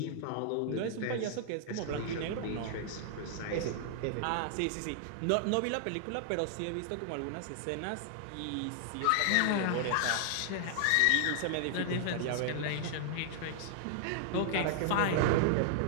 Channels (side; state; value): both; different; correlation -0.01